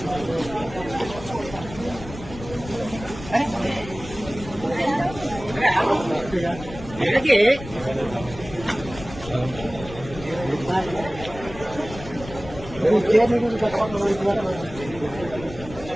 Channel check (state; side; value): noise; left; rumble, 13 dB below the sound